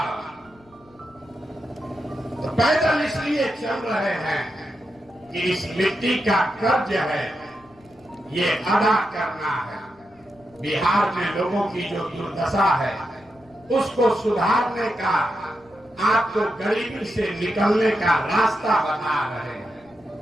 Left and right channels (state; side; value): noise; left; rumble, 29 dB below the sound